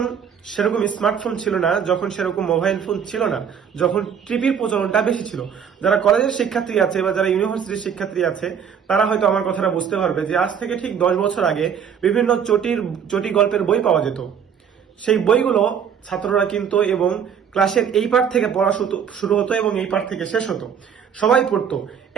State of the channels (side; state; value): left; quieter; 7.6 dB